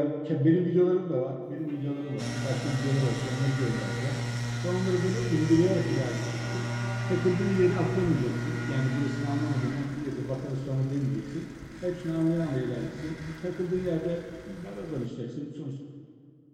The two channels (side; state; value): both; identical; correlation 1.00